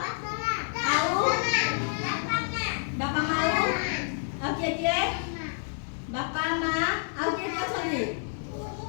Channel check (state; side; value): silent; right; 59 dB below the other